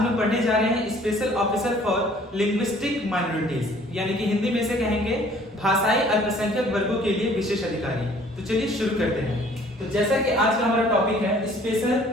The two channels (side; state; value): both; normal; correlation 0.55